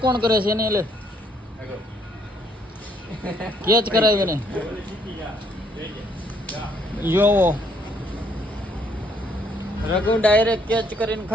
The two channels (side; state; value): both; normal; correlation 0.68